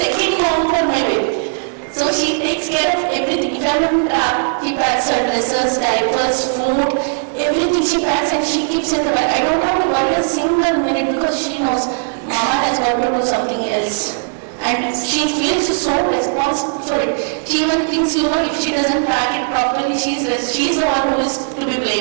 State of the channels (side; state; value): left; silent; digital silence